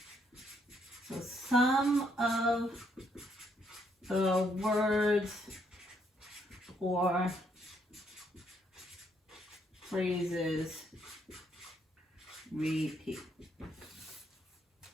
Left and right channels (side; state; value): both; normal; correlation 0.72